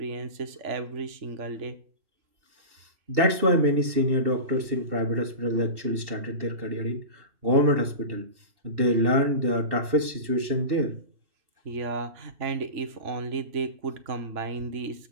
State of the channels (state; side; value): late; left; 2.7 ms